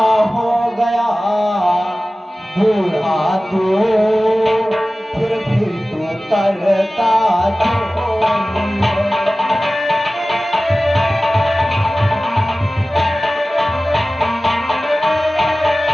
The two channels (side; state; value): both; normal; correlation 0.96